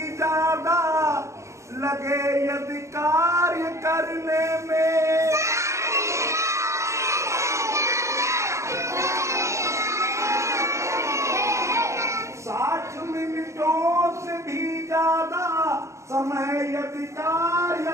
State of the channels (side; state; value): left; late; 0.14 ms